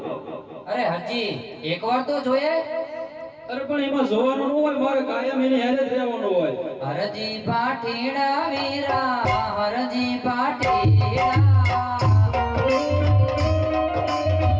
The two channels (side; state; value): both; identical; correlation 1.00